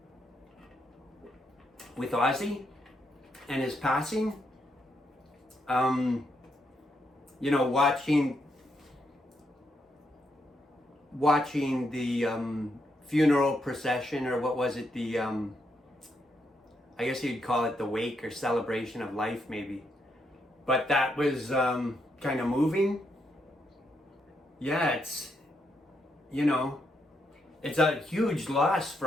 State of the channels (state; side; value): normal; both; correlation 0.79